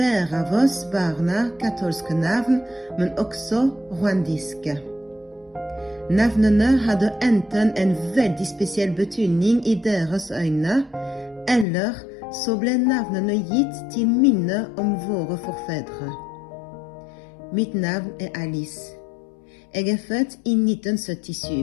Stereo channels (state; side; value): drops out; right; at 11.7 s